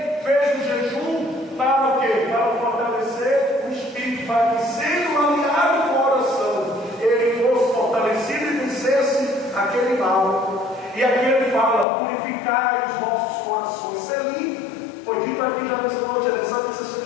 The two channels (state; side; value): drops out; right; at 11.9 s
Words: fez o jejum para o quê? Para fortalecer o espírito, para que, sendo alinhado com a oração, ele fosse fortalecido e vencesse aquele mal. E aqui ele fala: purificai os vossos corações. Ser limpo. Foi dito aqui já nessa noite, é necessário que você